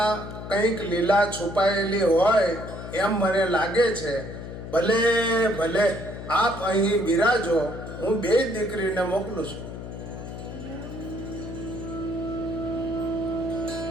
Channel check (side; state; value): left; noise; hum, 10 dB below the sound